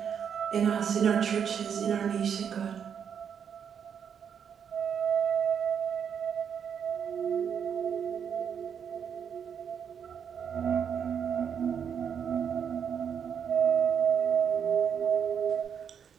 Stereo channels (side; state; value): left; quieter; 7.6 dB